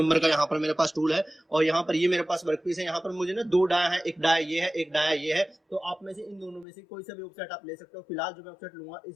का, यहाँ पर मेरे पास टूल है और यहाँ पर ये मेरे पास वर्कपीस है। यहाँ पर मुझे ना 2 डाया है, एक डाया ये है, एक डाया ये है। तो आप में से इन दोनों में से कोई सा भी ऑफसेट आप ले सकते हो। फिलहाल जो मैं ऑफसेट लूंगा इस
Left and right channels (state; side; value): drops out; right; at 6.7 s